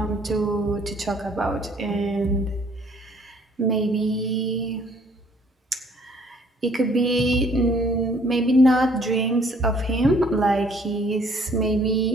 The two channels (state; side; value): normal; both; correlation 0.60